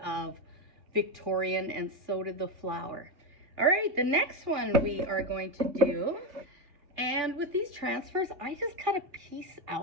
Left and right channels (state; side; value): late; left; 3.4 ms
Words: Victorian, and so did the flower. All right, the next one we are going to do, and with these transfers, I just cut a piece